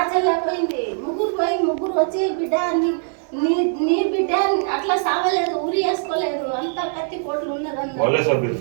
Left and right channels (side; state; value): left; silent; 62 dB below the other